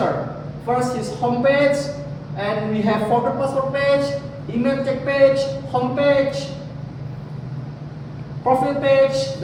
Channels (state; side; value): identical; both; correlation 1.00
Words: First is home page. And we have forward password page, email check page, home page, profile page,